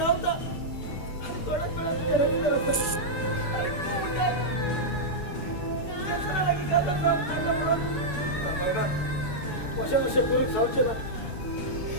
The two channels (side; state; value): right; late; 6.8 ms